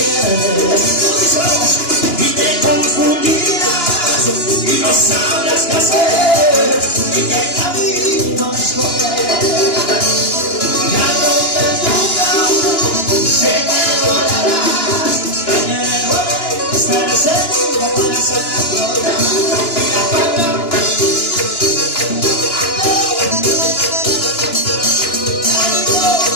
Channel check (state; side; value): late; right; 2.9 ms